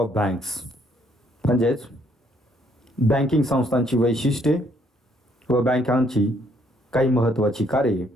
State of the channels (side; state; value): both; normal; correlation 0.67